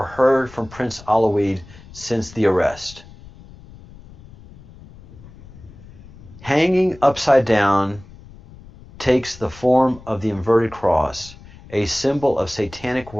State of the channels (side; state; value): left; noise; rumble, 20 dB below the sound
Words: heard from Prince Aloid since the arrest. Hanging upside down takes the form of the inverted cross, a symbol of satanic